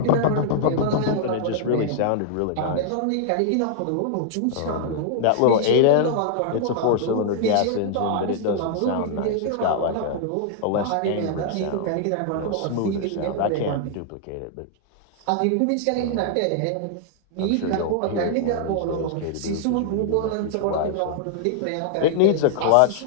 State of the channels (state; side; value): different; both; correlation -0.01